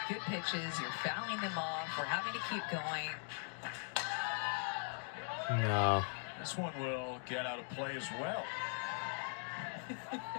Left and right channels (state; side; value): silent; right; 51 dB below the other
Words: good pitches. You're fouling them off. We're having to keep going. No. This one will get out of play as well.